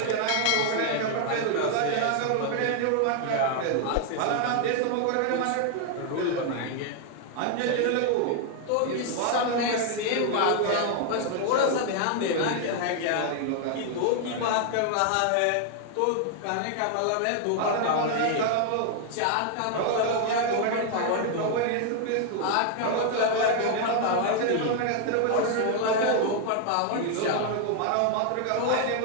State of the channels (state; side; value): different; both; correlation 0.00